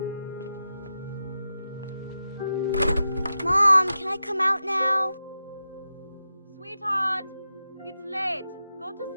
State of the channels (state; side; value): inverted; both; correlation -0.90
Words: Mom, can I come out now? Sweetheart, it's late. Go to